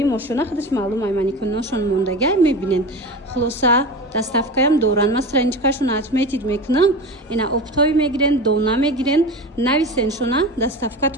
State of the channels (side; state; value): both; normal; correlation 0.29